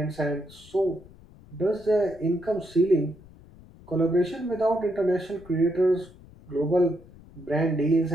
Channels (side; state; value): left; noise; rumble, 22 dB below the sound